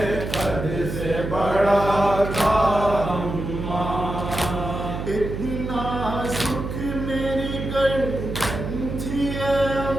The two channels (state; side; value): noise; right; hum, 5 dB below the sound